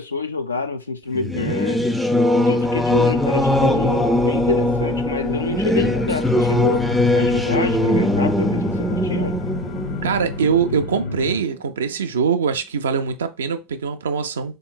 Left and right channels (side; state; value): both; normal; correlation 0.31